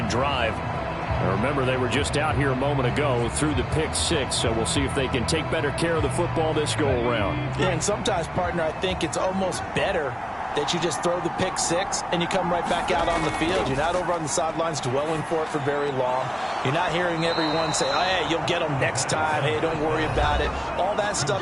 drive. Now remember, they were just out here a moment ago through the pick 6, so we'll see if they can take better care of the football this go-around. Yeah, and sometimes, partner, I think it's almost better that you just throw the pick 6 and you come right back out on the field. You're not over on the sidelines dwelling for it for very long. You're not hearing everyone say, oh, hey, you'll get them next time. Hey, don't worry about it. All that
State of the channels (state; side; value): identical; both; correlation 1.00